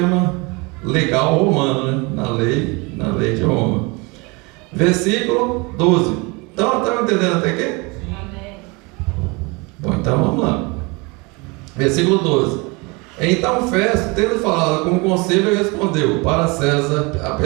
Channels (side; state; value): left; quieter; 27.5 dB